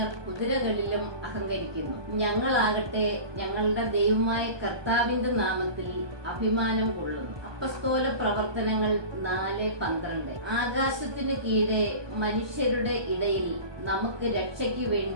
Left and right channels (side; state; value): left; late; 1.2 ms